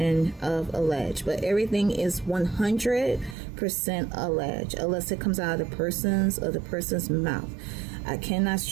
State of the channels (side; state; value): left; drops out; at 3.4 s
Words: of alleged. But everything is 100% alleged, unless it comes out of the person's mouth. I cannot